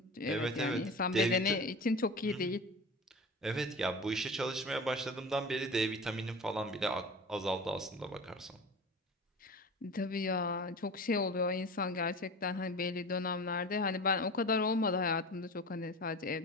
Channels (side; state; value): both; normal; correlation 0.34